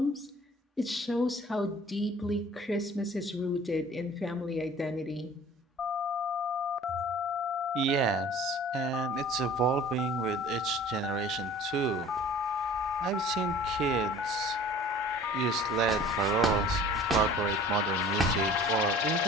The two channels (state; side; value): normal; both; correlation 0.47